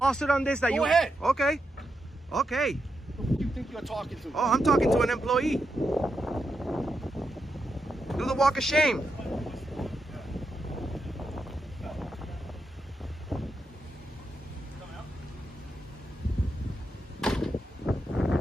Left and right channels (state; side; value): normal; both; correlation 0.85